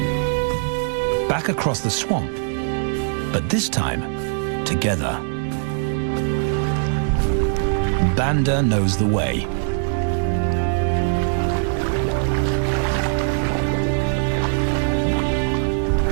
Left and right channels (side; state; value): left; silent; digital silence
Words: Back across the swamp, but this time, together. Banda knows the way.